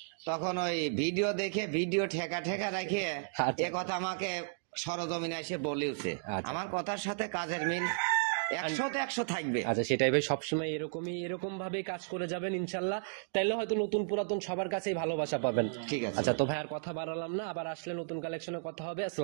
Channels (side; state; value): left; silent; digital silence